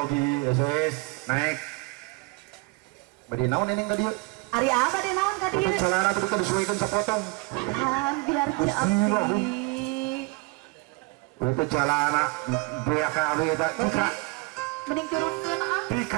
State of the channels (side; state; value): left; quieter; 25.8 dB